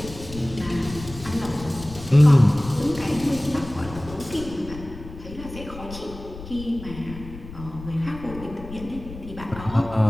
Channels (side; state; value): left; noise; rumble, 13 dB below the sound